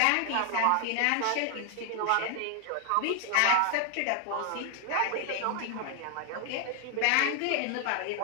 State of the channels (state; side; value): different; both; correlation 0.00